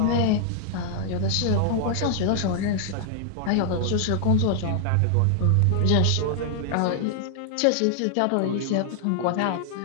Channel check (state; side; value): different; both; correlation 0.00